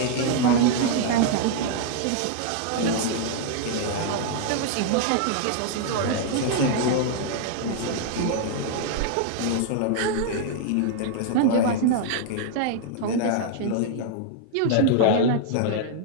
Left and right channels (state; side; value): different; both; correlation 0.00